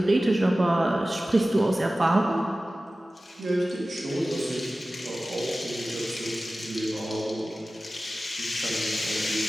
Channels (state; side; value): normal; both; correlation 0.96